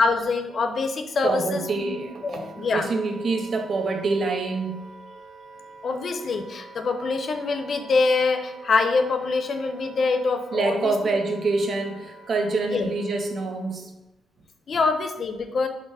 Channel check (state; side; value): normal; both; correlation 0.81